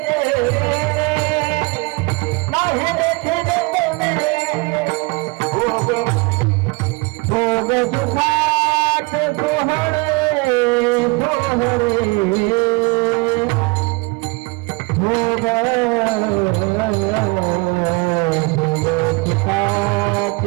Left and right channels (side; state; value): left; quieter; 26.4 dB